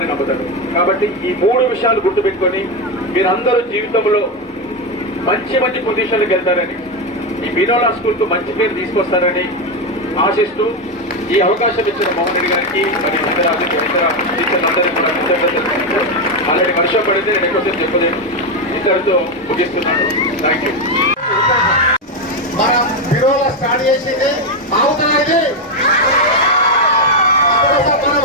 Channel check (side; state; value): both; normal; correlation 0.08